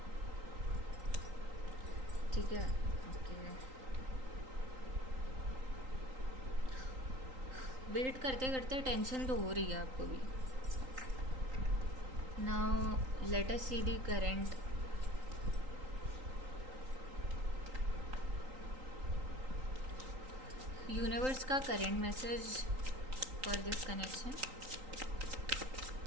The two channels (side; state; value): left; late; 3.8 ms